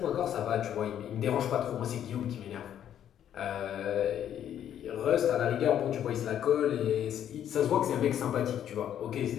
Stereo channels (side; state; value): right; quieter; 10.2 dB